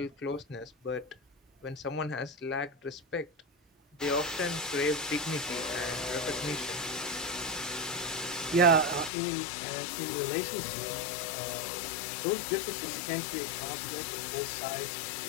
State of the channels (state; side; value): drops out; right; at 9.1 s